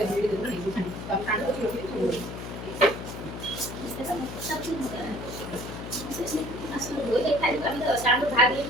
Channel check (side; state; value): left; noise; hum, 9 dB below the sound